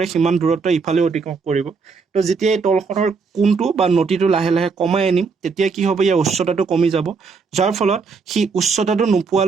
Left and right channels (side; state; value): left; quieter; 5.0 dB